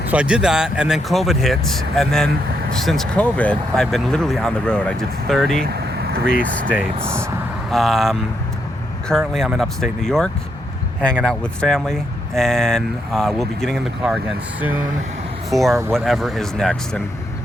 so I did that, and then COVID hit, and then since COVID, I've been literally on the road. I did 33 states. Currently, I'm in upstate New York, hanging out with family, and we'll be getting in the car again soon for whatever is next, and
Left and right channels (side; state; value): both; normal; correlation 0.79